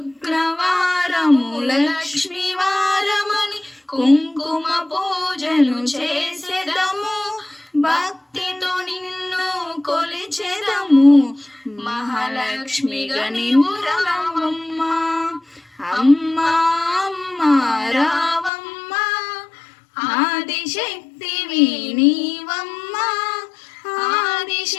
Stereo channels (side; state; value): right; drops out; at 18.5 s